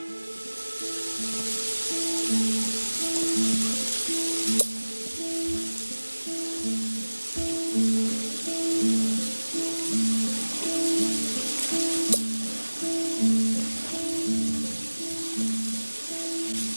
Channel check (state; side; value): inverted; both; correlation -1.00